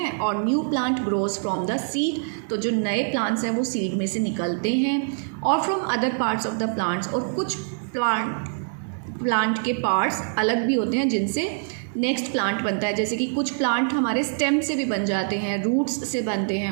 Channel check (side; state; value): left; silent; digital silence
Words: और new plant grows from the seed. तो जो नए plants हैं वो seed में से निकलते हैं, और from other parts of the plants, और कुछ plant के parts अलग भी होते हैं जिनसे नेक्स्ट प्लांट बनता है. जैसे कि कुछ प्लांट हमारे स्टेम से भी बन जाते हैं, रूट्स से बनते हैं